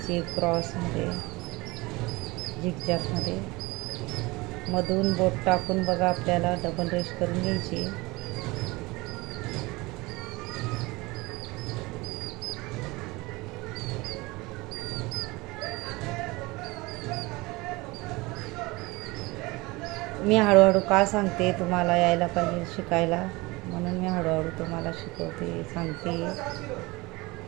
क्रॉसमध्ये, झिगझॅगमध्ये. मधून बोट टाकून बघा आपल्याला डबल रेष करून घ्यायची. मी हळूहळू का सांगते, तुम्हाला यायला पाहिजे शिकायला, म्हणून मी हळूहळू तुम्हाला शिकवते, सांगते.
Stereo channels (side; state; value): left; quieter; 22.9 dB